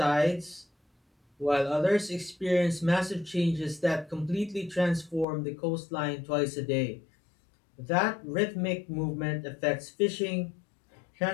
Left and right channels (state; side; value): drops out; right; at 5.2 s